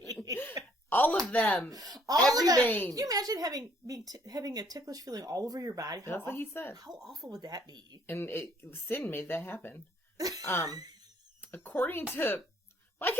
All of them. Every vein. Can you imagine having a ticklish feeling all over your body? That's what he said. How awful would that be? And sin made that happen. According to... Why can't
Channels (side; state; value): both; normal; correlation 0.64